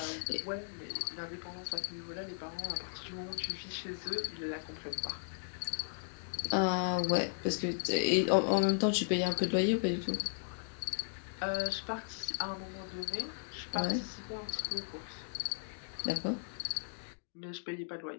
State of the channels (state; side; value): silent; right; digital silence